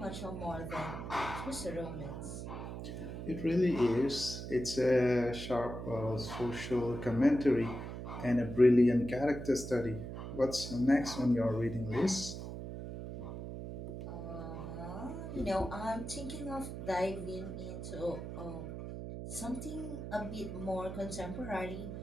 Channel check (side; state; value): right; noise; hum, 7 dB below the sound